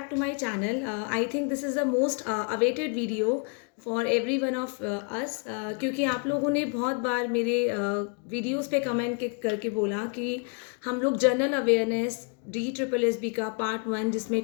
to my channel. I think this is the most awaited video for every one of us, क्योंकि आप लोगों ने बहुत बार मेरे videos पे कमेंट करके बोला कि हम लोग जनरल अवेयरनेस DSSB का पार्ट 1 जिसमें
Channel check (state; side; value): quieter; right; 34.1 dB